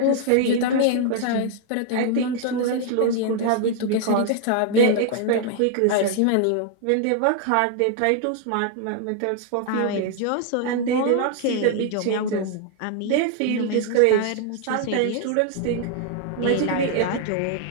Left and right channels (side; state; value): both; different; correlation 0.00